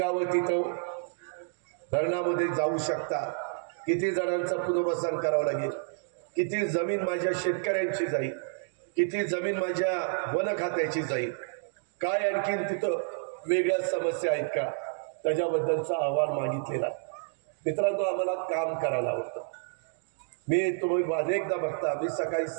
तिथं धरणामध्ये जाऊ शकतात, किती जणांचं पुनर्वसन करावं लागेल, किती जमीन माझ्या शेतकऱ्यांची जाईल, किती जमीन माझ्या वन खात्याची जाईल, काय आणखीन तिथं वेगळ्या समस्या आहेत का, त्याच्याबद्दलचा अहवाल मागितलेला. मित्रांनो, आम्हाला काम करायला आवडतं. मी तुम्ही अनेकदा बघता, मी सकाळी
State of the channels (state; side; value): silent; left; digital silence